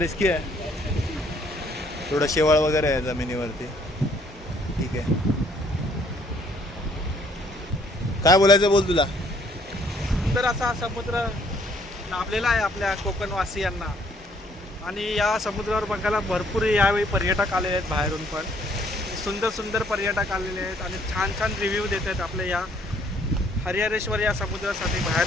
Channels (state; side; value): normal; both; correlation 0.64